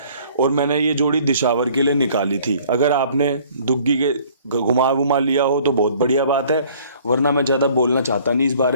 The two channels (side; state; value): both; inverted; correlation -0.56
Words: और मैंने ये जोड़ी दिशावर के लिए निकाली थी। अगर आपने दुग्गी के घुमा वुमा लिया हो तो बहुत बढ़िया बात है, वरना मैं ज़्यादा बोलना चाहता नहीं इस